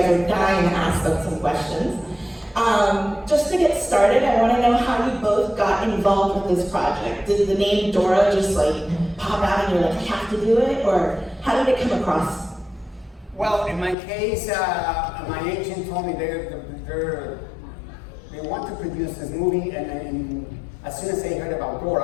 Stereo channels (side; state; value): right; drops out; at 14.0 s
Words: are dying to ask them some questions. Just to get started, I want to know how you both got involved with this project. Did the name Dora just like pop out and you're like, I have to do it, or how did it come across? Well, in my case, my agent told me they want to produce this movie, and as soon as they heard about